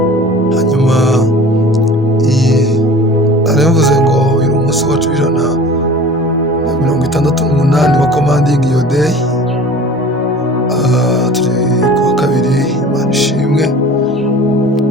Hanyuma naravuze ngo uyu ni umunsi wacu w'168 wa commanding your day. Turi kuwa kabiri, Imana ishimwe.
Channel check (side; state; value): both; normal; correlation 0.42